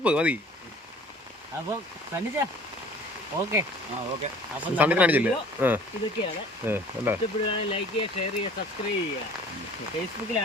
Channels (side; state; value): both; normal; correlation 0.49